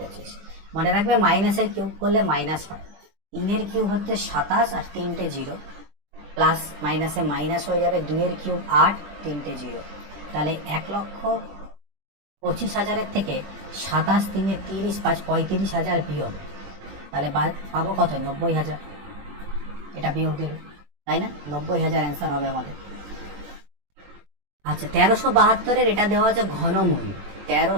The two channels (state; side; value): late; left; 21 ms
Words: মনে রাখবে মাইনাসের কিউব করলে মাইনাস হয়। 3-এর কিউব হচ্ছে 27 আর 3টে 0, প্লাস মাইনাসে মাইনাস হয়ে যাবে, 2-এর কিউব 8, 3টে 0, তাহলে 1,25,000-এর থেকে 27 3 30 5 35,000 বিয়োগ, তাহলে পাবো কত? 90,000। এটা বিয়োগ দিল, তাই না? 90,000 অ্যান্সার হবে আমাদের। আচ্ছা, 1372-এর এটা দেওয়া আছে ঘনমূল।